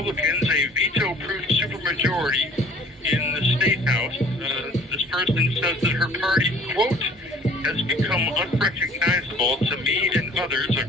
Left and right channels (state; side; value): normal; both; correlation 0.52